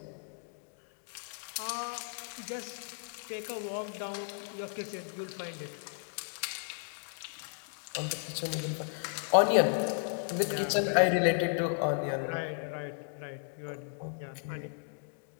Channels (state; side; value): silent; right; digital silence